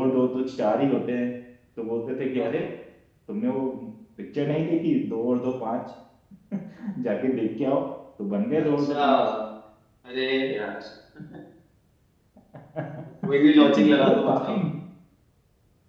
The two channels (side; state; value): both; identical; correlation 1.00